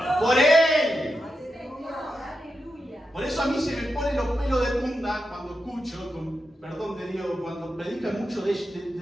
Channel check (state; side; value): normal; both; correlation 0.88